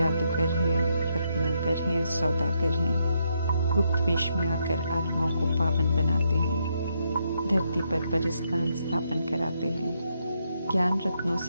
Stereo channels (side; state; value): both; inverted; correlation -0.78